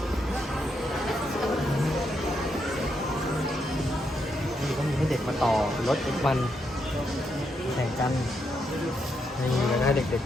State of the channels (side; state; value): both; normal; correlation 0.80